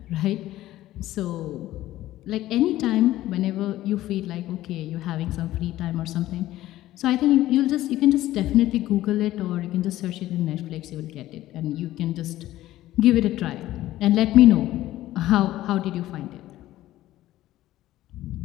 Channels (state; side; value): quieter; right; 14.9 dB